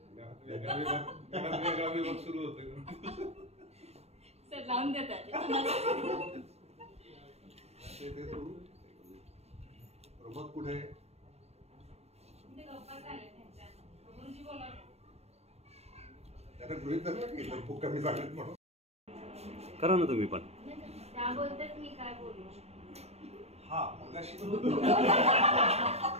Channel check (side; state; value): left; late; 0.31 ms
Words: सुरू होतं सर लावून देतात. प्रमोद कुठे? त्याला गृहित धरलं की तर खूप कमी झालेत म्हणून. करा ना तुम्ही पण. त्या बोलतात मी काय बोलू. हा मगाशी